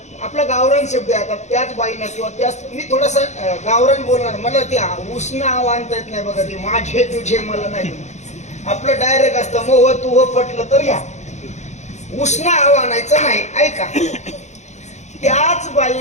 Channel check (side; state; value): right; late; 0.33 ms